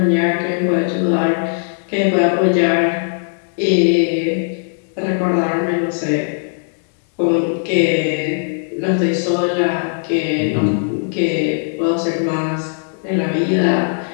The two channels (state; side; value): silent; right; digital silence